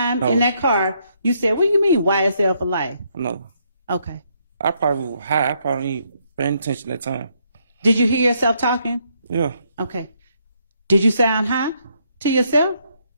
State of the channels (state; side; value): inverted; both; correlation -0.73